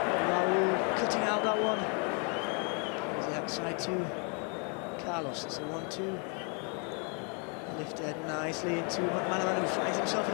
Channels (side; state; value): right; quieter; 36.8 dB